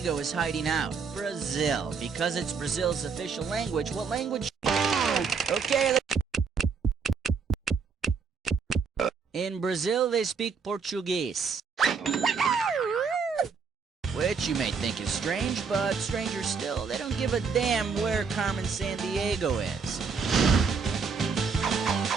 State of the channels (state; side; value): quieter; left; 5.4 dB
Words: is hiding out. Brazil. Because it's Brazil's official language, what language? Okay, in Brazil, they speak Portuguese. Which you may think is strange, but stranger still, they don't give a damn where Carmen Sandiego is.